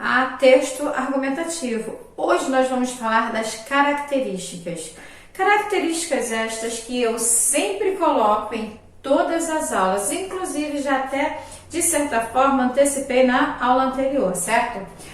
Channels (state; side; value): identical; both; correlation 1.00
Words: texto argumentativo. Hoje nós vamos falar das características. Características estas que eu sempre coloco em todas as aulas, inclusive já até, de certa forma, antecipei na aula anterior, certo?